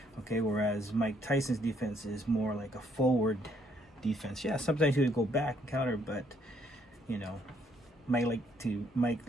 Okay, whereas Mike Tyson's defense is more like a forward defense. Yeah, sometimes he would go back and counter, but Mike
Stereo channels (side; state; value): both; normal; correlation 0.69